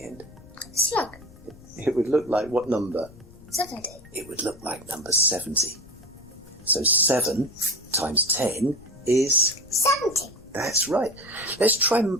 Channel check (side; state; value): left; noise; rumble, 21 dB below the sound